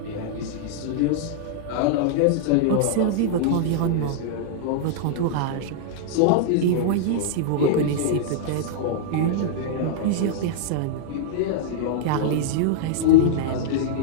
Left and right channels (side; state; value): both; different; correlation -0.01